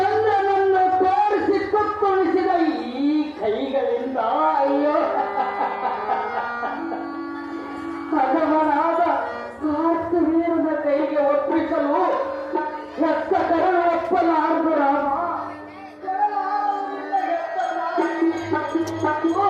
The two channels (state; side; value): identical; both; correlation 1.00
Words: ತೋರಿಸಿ ತುತ್ತುಣಿಸಿದ ಈ ಕೈಗಳಿಂದ ಅಯ್ಯೋ ಹದವನಾದ ಕಾರ್ತವೀರನ ಕೈಗೆ ಒಪ್ಪಿಸಲು ಹೆತ್ತ ಕರಳು ಒಪ್ಪಲಾರದು ರಾಮ.